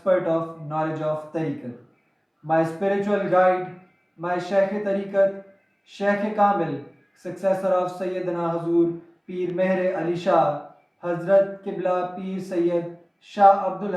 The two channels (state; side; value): identical; both; correlation 1.00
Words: of knowledge of Tariqat. My spiritual guide, my Shaykh Tariqat, Shaykh Kamil, successor of Sayyidina Hazur, Peer Meher Ali Shah, Hazrat Qibla Peer Syed, Shah